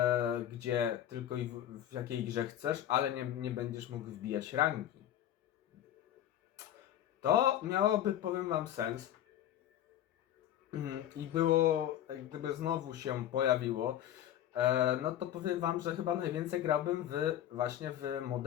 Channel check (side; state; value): right; quieter; 11.5 dB